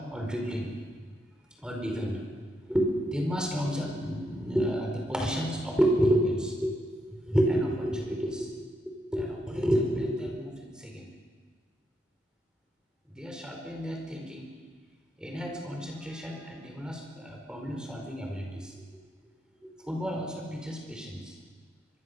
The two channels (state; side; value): normal; both; correlation 0.81